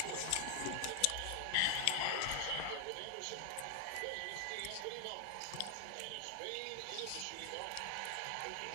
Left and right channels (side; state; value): both; different; correlation 0.00